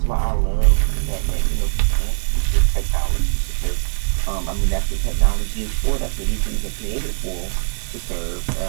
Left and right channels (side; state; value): left; silent; digital silence